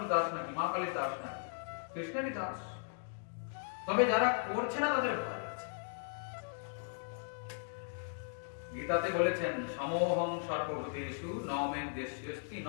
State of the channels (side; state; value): right; silent; digital silence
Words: দাস নাকি, মা কালীর দাস নাকি? কৃষ্ণেরই দাস। তবে যারা করছে না তাদের ভয় আছে। গীতাতে বলেছেন, সমোহং সর্বভূতেষু ন মে দ্বেষ্যস্তি